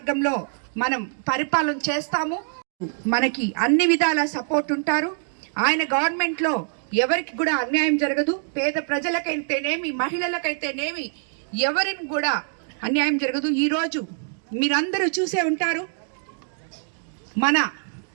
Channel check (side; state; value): left; silent; 62 dB below the other